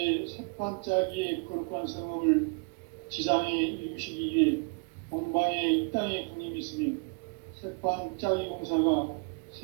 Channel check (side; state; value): left; quieter; 33.7 dB